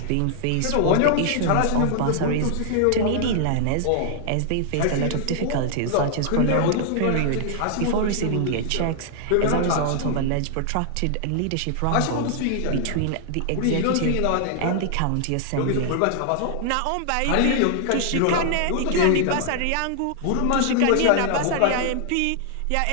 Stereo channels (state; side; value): different; both; correlation -0.01